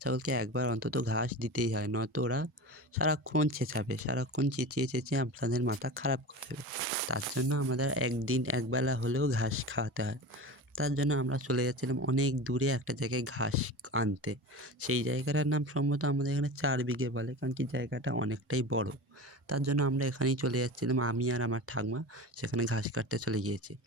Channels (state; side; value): normal; both; correlation 0.31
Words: ছাগলকে একবার অন্তত ঘাস দিতেই হয়, নয়তো ওরা সারাক্ষণ চেঁচাবে, সারাক্ষণ চেঁচিয়ে চেঁচিয়ে আপনাদের মাথা খারাপ করে দেবে। তার জন্য আমাদের একদিন একবেলা হলেও ঘাস খাওয়াতে হয়। তার জন্য আমরা চলে যাচ্ছিলাম অনেক দূরে একটা জায়গায় ঘাস আনতে। সেই জায়গাটার নাম সম্ভবত আমাদের এখানে 4 বিঘে বলে, কারণ কি জায়গাটা অনেকটাই বড়। তার জন্য আমরা এখানেই চলে যাচ্ছিলাম, আমি আর আমার ঠাকমা সেখানে ঘাস কাটতে চলে গিয়েছি।